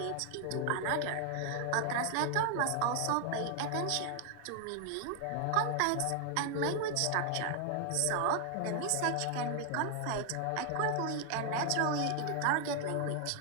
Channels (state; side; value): different; both; correlation 0.00